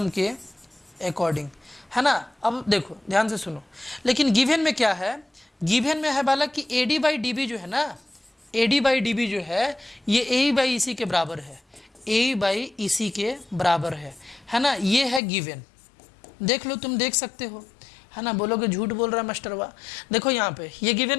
के अकॉर्डिंग, है ना। अब देखो ध्यान से सुनो, लेकिन गिवन में क्या है, गिवन में है बालक कि AD बाई DB जो है ना, AD बाई DB जो है ये AE बाई EC के बराबर है, AE बाई EC के बराबर है ना, ये है गिवन। देख लो, तुम देख सकते हो, है ना। बोलोगे झूठ बोल रहा है मास्टरवा, देखो यहाँ पे ये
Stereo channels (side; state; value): right; drops out; at 15.2 s